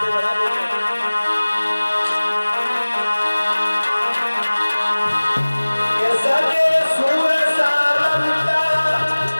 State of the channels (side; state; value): both; inverted; correlation -1.00